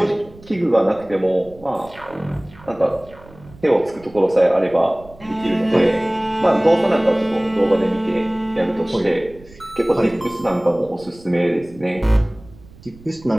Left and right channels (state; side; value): noise; right; rumble, 22 dB below the sound